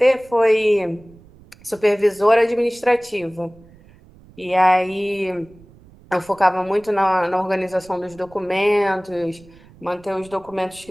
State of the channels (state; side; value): noise; right; rumble, 25 dB below the sound